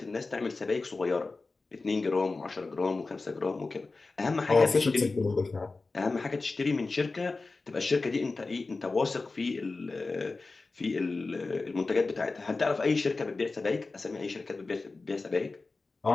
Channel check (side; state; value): right; quieter; 3.7 dB